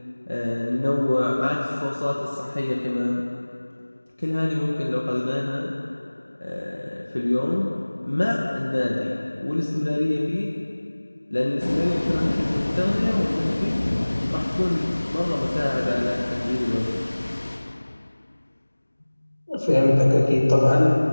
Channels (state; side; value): inverted; both; correlation -1.00